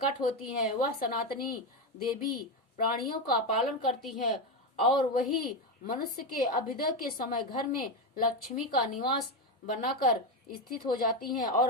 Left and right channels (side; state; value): both; normal; correlation 0.11